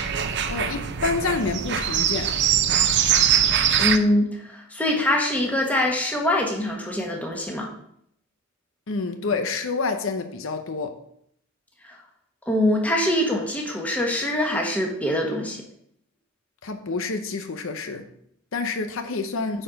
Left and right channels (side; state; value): both; normal; correlation 0.27